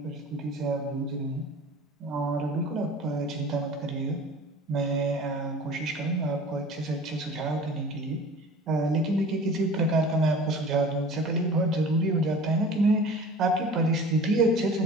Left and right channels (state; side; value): normal; both; correlation 0.42